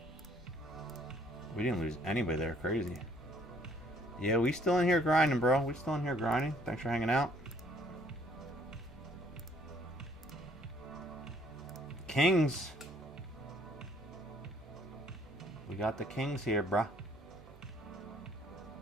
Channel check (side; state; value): both; normal; correlation 0.62